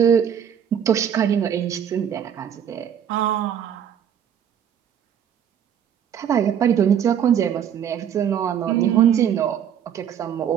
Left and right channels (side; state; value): left; quieter; 8.9 dB